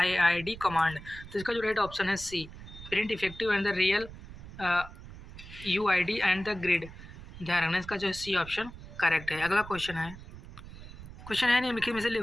तो इसका जो राइट ऑप्शन है C print effective and the real UID and the grid. ध्यान रखना, इसका जो सी ऑप्शन करेक्ट है। अगला क्वेश्चन है निम्नलिखित में से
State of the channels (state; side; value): noise; right; rumble, 15 dB below the sound